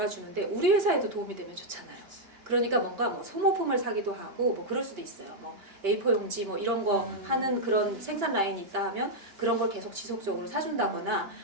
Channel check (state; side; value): late; left; 2.9 ms